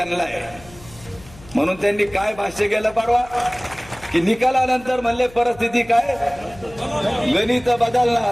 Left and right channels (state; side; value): noise; left; hum, 22 dB below the sound